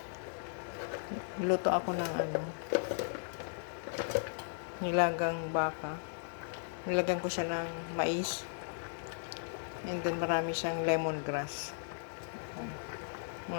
Luto ako ng nilagang baka. Nilagyan ko siya ng mais. And then marami siyang lemongrass.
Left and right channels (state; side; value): silent; right; 53 dB below the other